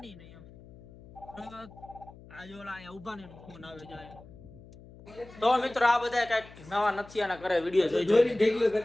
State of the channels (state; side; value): noise; left; hum, 20 dB below the sound